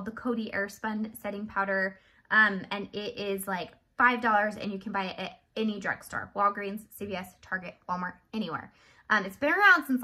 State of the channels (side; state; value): both; identical; correlation 1.00